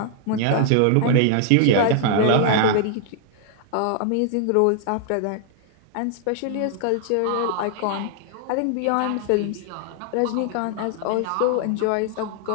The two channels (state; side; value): different; both; correlation 0.00